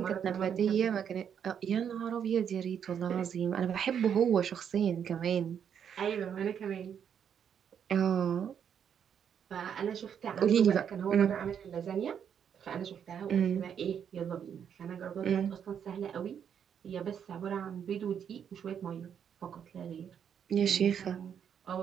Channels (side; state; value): left; quieter; 8.2 dB